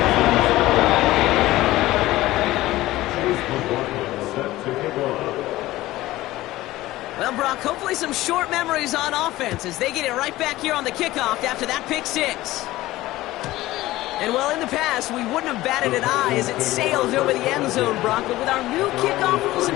Well, Brock, hopefully some short memories on offense as they get it right back here on the kickoff after that pick 6. And, well, in the past, we wouldn't have batted an eye as it sails over the end zone, Brock. But with our new kickoff rules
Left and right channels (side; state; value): right; quieter; 17.0 dB